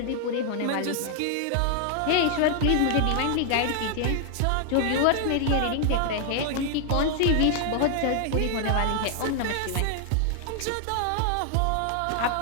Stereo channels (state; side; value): different; both; correlation 0.00